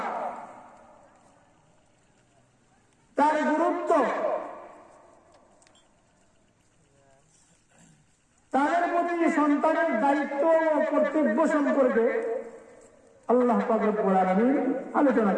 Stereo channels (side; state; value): both; identical; correlation 1.00